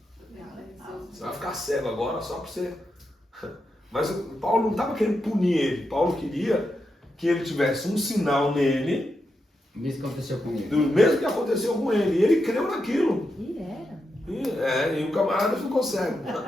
Você vai ficar cego agora só para você. Mas Paulo não estava querendo punir ele. Paulo queria que ele tivesse um sinal nele. Mesmo que aconteceu com ele. Do mesmo que aconteceu com ele. E ele creu naquilo. E era. E o camarada ficou cego.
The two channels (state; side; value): normal; both; correlation 0.86